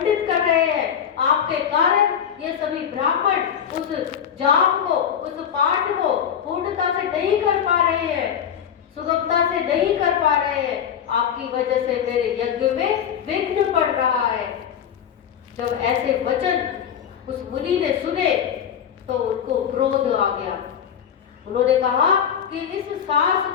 कर रहे हैं। आपके कारण ये सभी ब्राह्मण उस जाप को, उस पाठ को पूर्णता से नहीं कर पा रहे हैं, सुगमता से नहीं कर पा रहे हैं। आपकी वजह से मेरे यज्ञ में विघ्न पड़ रहा है। जब ऐसे वचन उस मुनि ने सुने तो उनको क्रोध आ गया। उन्होंने कहा कि इस सांस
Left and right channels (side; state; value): right; quieter; 8.5 dB